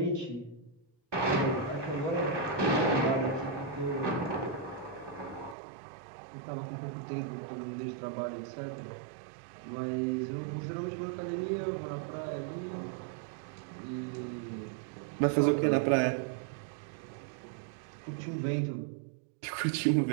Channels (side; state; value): left; drops out; at 5.6 s